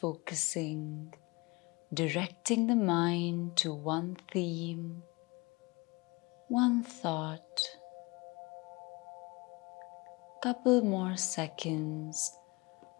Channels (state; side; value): quieter; right; 25.3 dB